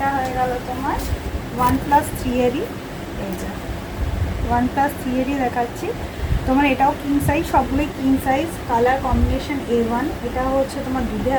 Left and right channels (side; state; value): both; identical; correlation 1.00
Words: হয়ে গেল তোমার 1+3 এরই, এই যে 1+3 এরই দেখাচ্ছি তোমার। এটাও কিং সাইজ, সবগুলোই king size. Colour combination A1। এটা হচ্ছে তোমার দুধে